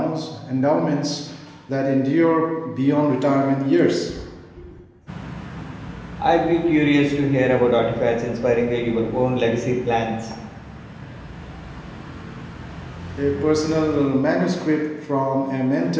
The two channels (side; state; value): both; identical; correlation 1.00